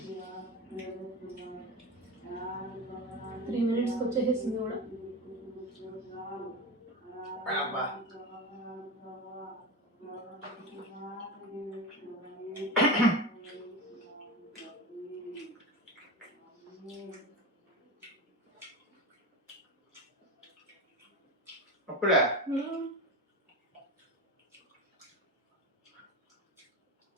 3 మినిట్స్కి వచ్చేసింది కూడా.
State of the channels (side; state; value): both; normal; correlation 0.23